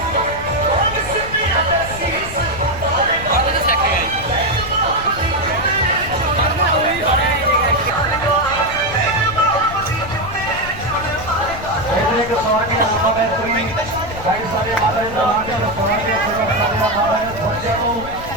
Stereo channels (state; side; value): noise; left; rumble, 12 dB below the sound